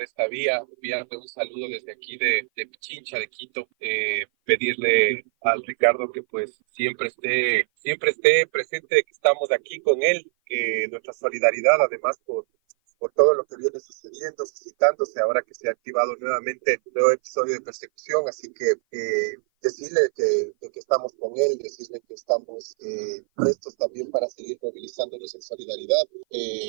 esta vía, enviarle un saludo desde aquí de Pichincha, de Quito, pedirle al Ricardo que pues siempre esté presente, que estamos aquí con él, que nuestra solidaridad además por todo lo que viene sucediendo, suscitándose ahora que se ha activado nuevamente un nuevo episodio de persecución, así que decirle que estamos con él, decirle que estamos prestos también para seguir movilizándonos en solidaridad,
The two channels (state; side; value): silent; left; 56 dB below the other